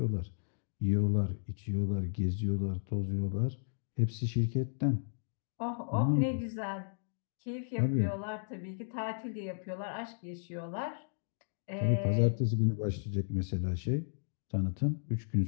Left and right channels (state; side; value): silent; right; digital silence